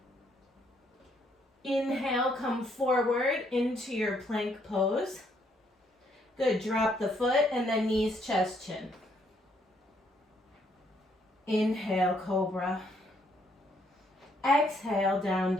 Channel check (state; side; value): normal; both; correlation 0.70